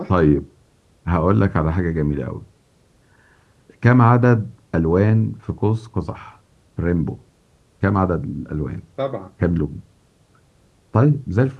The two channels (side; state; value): both; identical; correlation 1.00